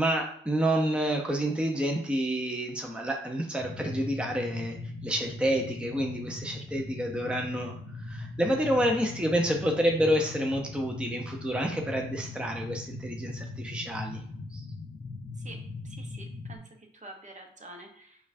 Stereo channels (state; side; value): normal; both; correlation 0.76